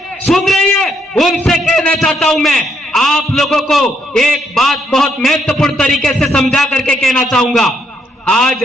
सुन रही है, उनसे कहना चाहता हूं मैं, आप लोगों को एक बात बहुत महत्वपूर्ण तरीके से समझा करके कहना चाहूंगा। आज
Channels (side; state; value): both; normal; correlation 0.74